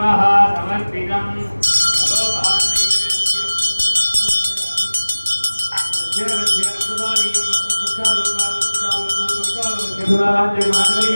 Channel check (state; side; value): inverted; both; correlation -1.00